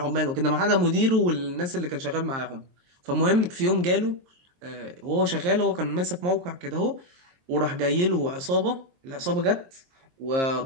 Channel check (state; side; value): late; left; 23 ms